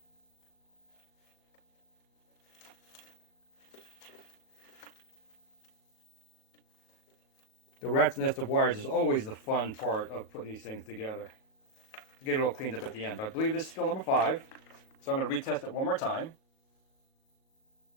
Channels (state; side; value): late; right; 38 ms